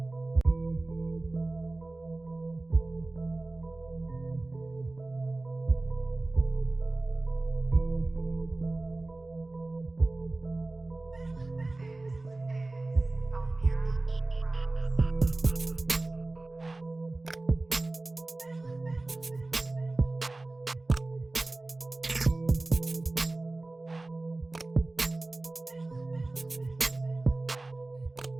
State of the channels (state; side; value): quieter; left; 3.0 dB